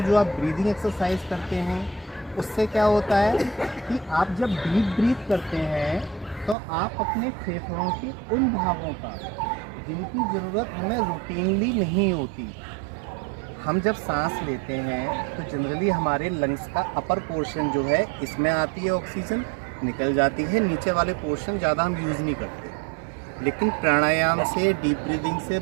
जो आप ब्रीदिंग एक्सरसाइज करते हैं, उससे क्या होता है कि आप जब डीप ब्रीथ करते हैं तो आप अपने फेफड़ों के उन भागों का जिनकी ज़रूरत हमें रूटीनली नहीं होती, हम जब सांस लेते हैं तो जनरली हमारे लंग्स का अपर पोर्शन जो है इसमें आती है ऑक्सीजन, निकल जाती है, नीचे वाले पोर्शन ज़्यादा हम यूज़ नहीं करते। लेकिन प्राणायाम से, डीप ब्रीदिंग से,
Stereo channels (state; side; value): drops out; left; at 6.6 s